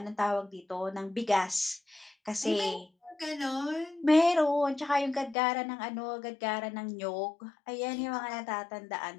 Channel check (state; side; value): drops out; right; at 5.4 s